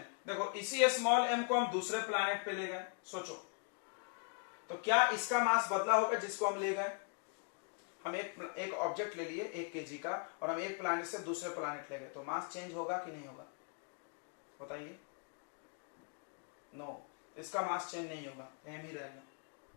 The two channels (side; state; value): right; quieter; 38.8 dB